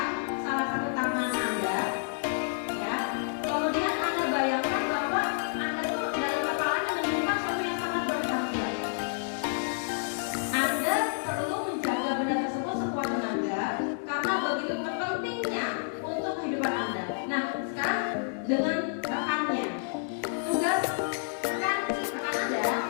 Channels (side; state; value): right; silent; 58 dB below the other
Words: salah satu tangan Anda, ya. Kemudian Anda bayangkan bahwa Anda tuh dalam kepalanya menyimpan sesuatu yang sangat berharga. Anda perlu menjaga benda tersebut sekuat tenaga karena begitu pentingnya untuk kehidupan Anda. Nah, sekarang dengan rekannya, tugas rekan Anda